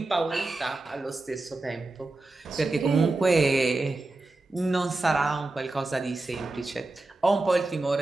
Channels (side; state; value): left; quieter; 3.1 dB